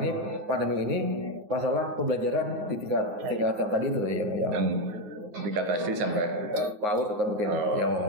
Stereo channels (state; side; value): late; left; 9.6 ms